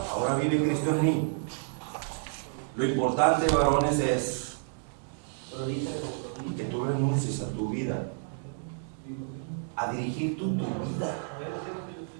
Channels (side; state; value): left; silent; 58 dB below the other